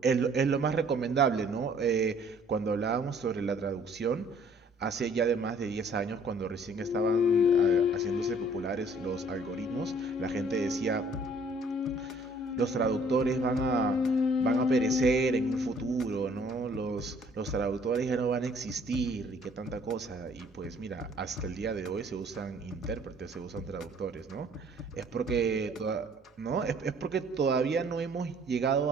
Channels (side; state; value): both; normal; correlation 0.58